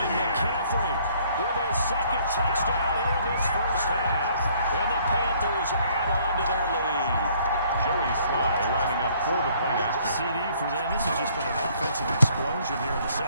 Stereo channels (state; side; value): inverted; both; correlation -0.62